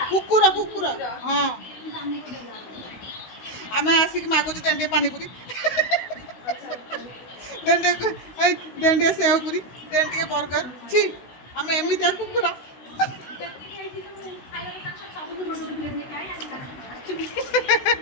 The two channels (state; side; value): late; right; 16 ms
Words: कुकुर कुकुर हाँ आम आसिक मागुच तेंटे पानीपुरी तेंटे सेवपुरी तेंटे बर्गर छी आम एमती कुकुर